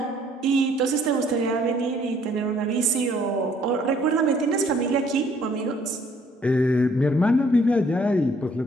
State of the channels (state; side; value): normal; both; correlation 0.62